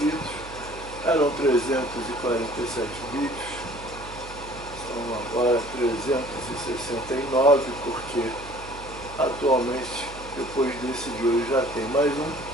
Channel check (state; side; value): noise; right; hum, 16 dB below the sound